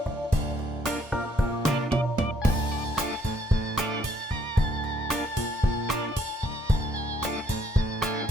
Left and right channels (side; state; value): both; normal; correlation 0.67